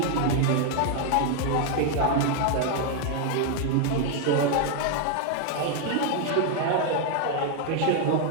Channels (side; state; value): both; different; correlation 0.00